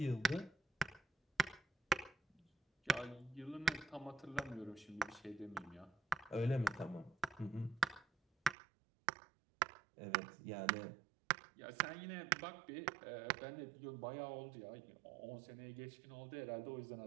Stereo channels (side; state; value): left; drops out; at 8.6 s